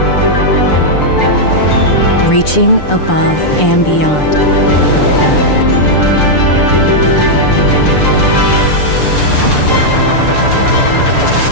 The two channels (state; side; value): late; right; 6.7 ms